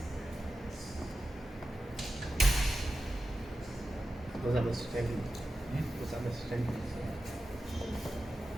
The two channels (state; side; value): normal; both; correlation 0.93